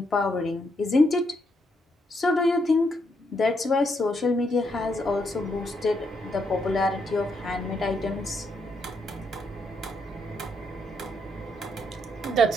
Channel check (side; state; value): both; normal; correlation 0.77